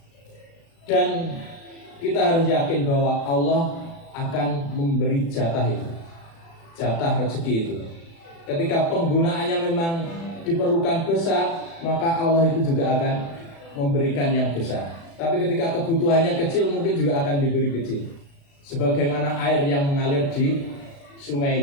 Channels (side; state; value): right; late; 36 ms